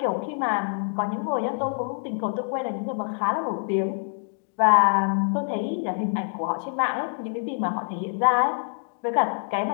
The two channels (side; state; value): right; silent; digital silence